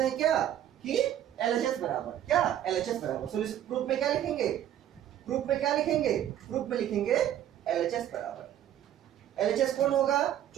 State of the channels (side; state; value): left; quieter; 11.2 dB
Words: हैं क्या कि LHS बराबर क्या, LHS बराबर सॉल्यूशन प्रूफ में क्या लिखेंगे, प्रूफ में क्या लिखेंगे, प्रूफ में लिखेंगे LHS बराबर। LHS कौन होगा,